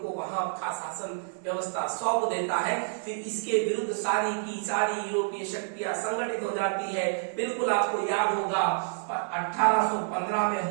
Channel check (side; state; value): left; silent; 59 dB below the other